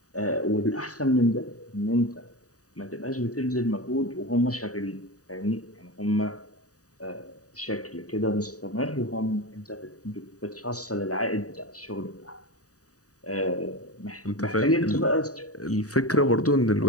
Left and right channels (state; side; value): late; right; 0.66 ms